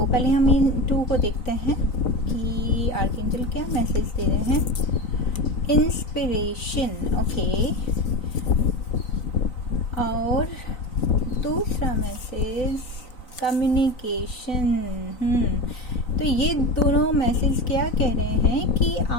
पहले हम इन 2 को देखते हैं कि आर्कएंजल क्या मैसेज दे रहे हैं। Inspiration, okay. और दूसरा मैसेज कम्युनिकेशन। तो ये दोनों मैसेज क्या कह रहे हैं कि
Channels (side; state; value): right; late; 3.9 ms